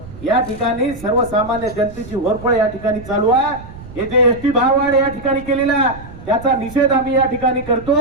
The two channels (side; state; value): right; noise; rumble, 16 dB below the sound